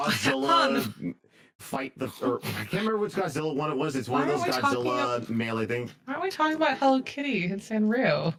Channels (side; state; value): both; identical; correlation 1.00